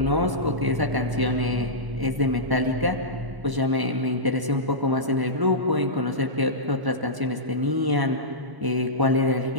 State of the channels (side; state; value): left; late; 1.0 ms